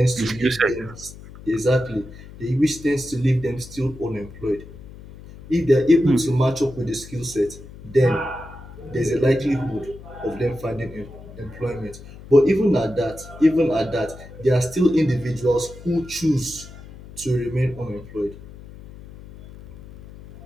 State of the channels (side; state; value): left; noise; hum, 17 dB below the sound